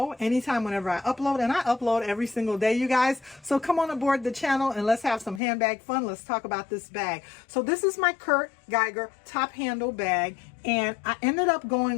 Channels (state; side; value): drops out; right; at 5.4 s